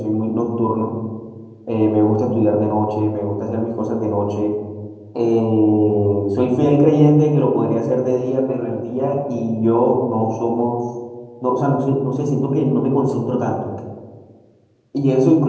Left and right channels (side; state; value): both; identical; correlation 1.00